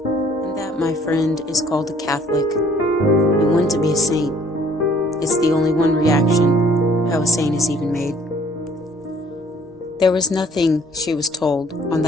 And that, my friend, is called a Catholic, and one to be a saint. It's the only one reaction, how a saint is even made. There was nothing, she was told, on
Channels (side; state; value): both; normal; correlation 0.59